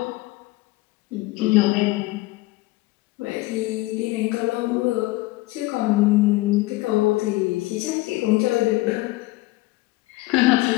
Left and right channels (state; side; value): quieter; right; 20.0 dB